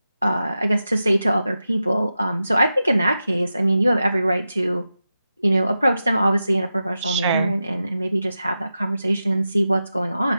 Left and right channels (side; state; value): both; inverted; correlation -0.91